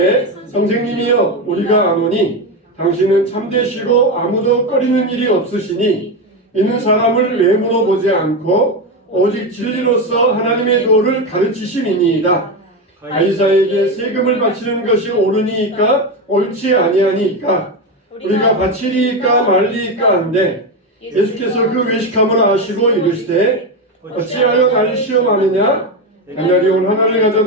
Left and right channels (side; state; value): both; normal; correlation 0.14